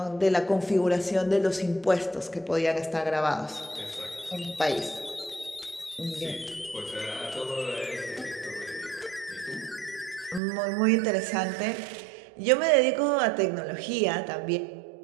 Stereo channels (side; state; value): left; drops out; at 10.4 s